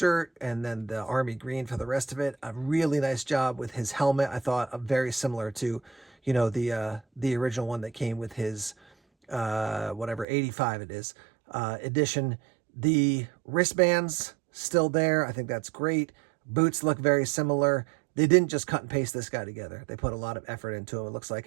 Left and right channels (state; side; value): drops out; left; at 10.2 s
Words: and then the army green for the rest of it. A really nice job with his helmet. I thought very similar to, the original one that came with his, 85 it is, edition. The wristbands still there. I think that's great. Boots look very similar. They didn't just cut and paste this guy together. They put a lot of effort into him, it looks